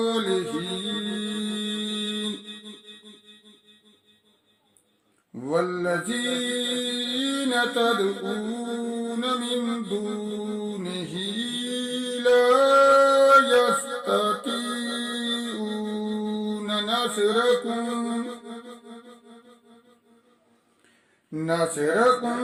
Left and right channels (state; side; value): identical; both; correlation 1.00